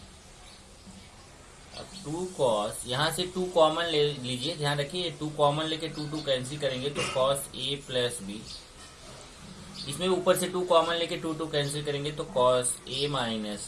अब 2 cos, यहाँ से 2 कॉमन ले लीजिए, ध्यान रखिए 2 कॉमन लेके 2 कैंसिल करेंगे तो cos a प्लस बी, इसमें ऊपर से 2 कॉमन लेके 2 कैंसिल करेंगे तो cos a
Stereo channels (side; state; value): both; identical; correlation 1.00